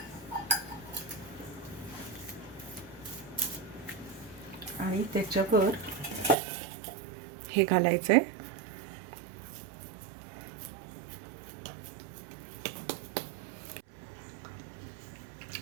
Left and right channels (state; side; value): drops out; left; at 6.4 s